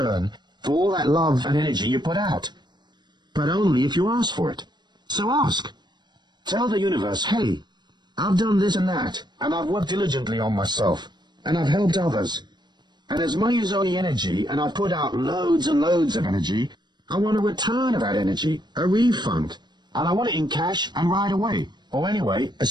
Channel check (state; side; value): late; left; 0.21 ms